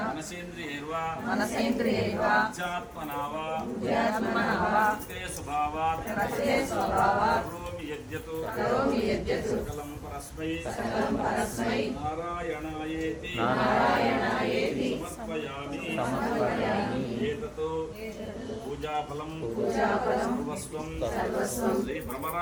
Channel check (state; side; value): identical; both; correlation 1.00